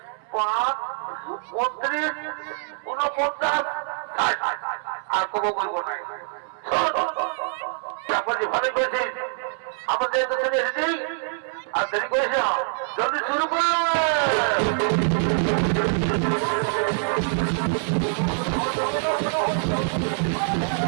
5 29 49 আর কবো বলবো না তারপর যে ভালো করেছিস আমাদের তো ছেলে এসেছেই আর দেরি করিস না জলদি শুরু করলো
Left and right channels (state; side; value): silent; left; 62 dB below the other